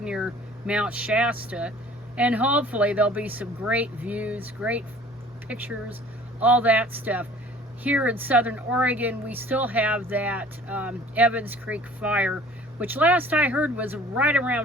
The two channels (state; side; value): normal; both; correlation 0.49